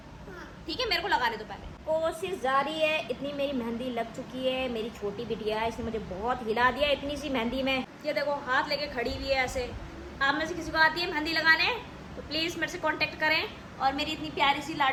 ठीक है। मेरे को लगाने दो पहले। कोशिश जारी है। इतनी मेरी मेहंदी लग चुकी है। मेरी छोटी बिटिया है, इसने मुझे बहुत हिला दिया इतनी सी मेहंदी में। ये देखो हाथ लेके खड़ी हुई है ऐसे। आप में से किसी को आती है मेहंदी लगाने तो प्लीज़ मेरे से कांटेक्ट करें। और मेरी इतनी प्यारी सी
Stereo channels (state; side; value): identical; both; correlation 1.00